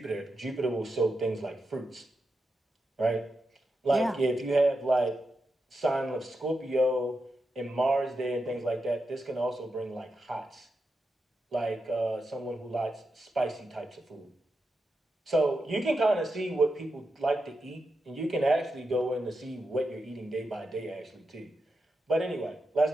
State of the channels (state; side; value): normal; both; correlation 0.87